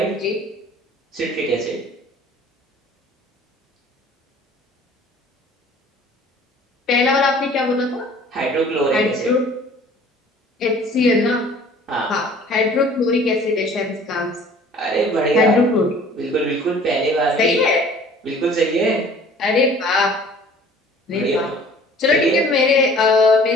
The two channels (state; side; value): normal; both; correlation 0.50